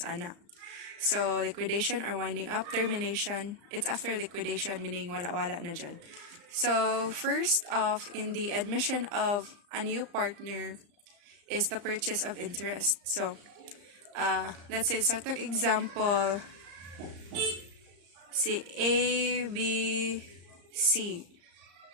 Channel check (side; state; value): left; late; 34 ms